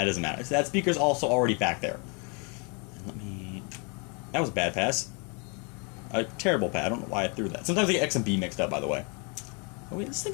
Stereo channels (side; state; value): right; quieter; 34.1 dB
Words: doesn't matter. So that speaker's also already back there. That was a bad pass. A terrible pass. I don't know why I threw that. Sometimes I get X and B mixed up, by the way. Oh wait, this